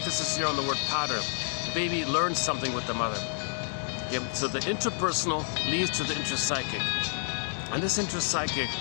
here on the word pattern. The baby learns something with the mother. Okay, so the interpersonal leads to the intrapsychic. And this intrapsychic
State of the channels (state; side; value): silent; right; digital silence